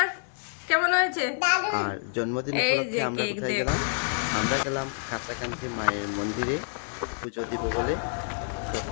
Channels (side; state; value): right; silent; 59 dB below the other